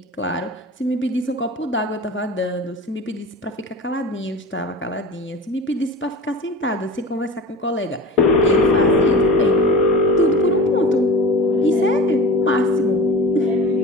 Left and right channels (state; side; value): normal; both; correlation 0.35